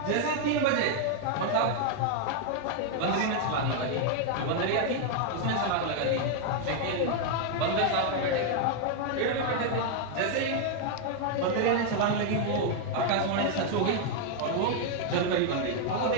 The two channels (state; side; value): different; both; correlation 0.00